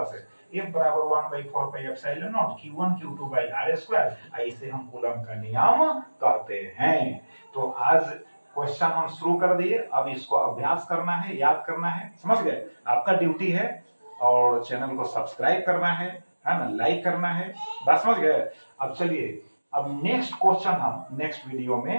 से F बराबर 1 by 4 pi epsilon naught Q1 Q2 by r square, इसे हम कूलम का नियम कहते हैं। तो आज क्वेश्चन हम शुरू कर दिए, अब इसको अभ्यास करना है, याद करना है, समझ गए, आपका ड्यूटी है। और चैनल को सब्सक्राइब करना है ना, लाइक करना है, बस समझ गए। अब चलिए, अब नेक्स्ट क्वेश्चन हम नेक्स्ट वीडियो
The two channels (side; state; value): both; inverted; correlation -1.00